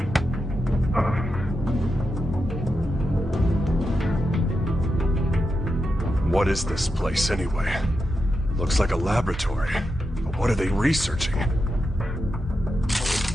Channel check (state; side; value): normal; both; correlation 0.87